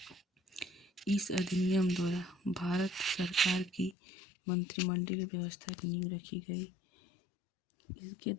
इस अधिनियम द्वारा भारत सरकार की मंत्रिमंडलीय व्यवस्था की नींव रखी गई। इसके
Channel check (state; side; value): drops out; right; at 4.0 s